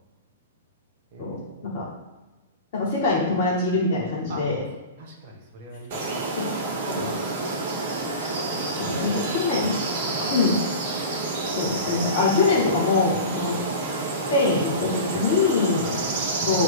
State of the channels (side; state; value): both; inverted; correlation -0.31